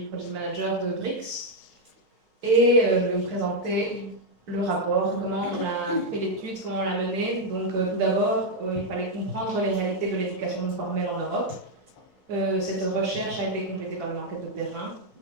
Project Manager de BRICS et je vais vous présenter le rapport, comment on a fait l'étude, comment on l'a menée. Donc tout d'abord, il fallait comprendre les réalités de l'éducation non formelle en Europe. Cette recherche a été complétée par une enquête de terrain.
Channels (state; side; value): normal; both; correlation 0.01